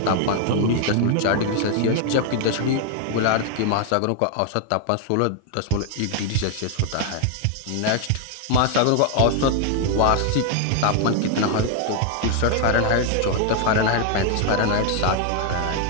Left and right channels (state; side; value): different; both; correlation 0.00